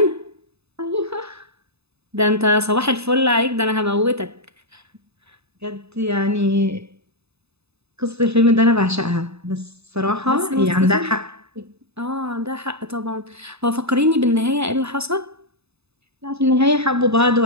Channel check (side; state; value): left; late; 0.79 ms